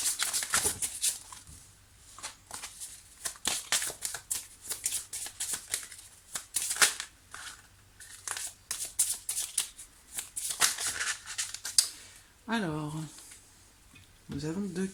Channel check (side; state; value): both; identical; correlation 1.00